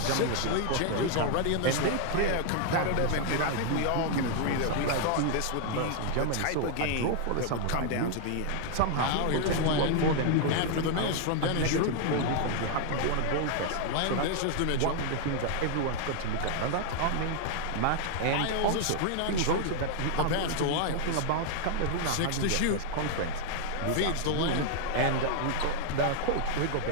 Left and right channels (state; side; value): different; both; correlation 0.00